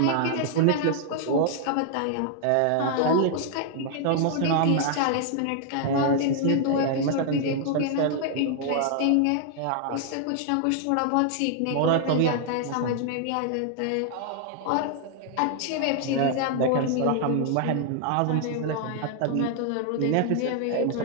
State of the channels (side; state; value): both; different; correlation 0.00